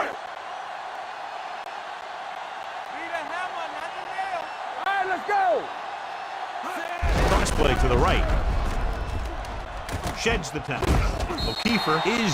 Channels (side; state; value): both; identical; correlation 1.00